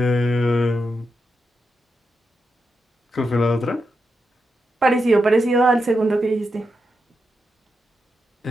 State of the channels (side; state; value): both; normal; correlation 0.86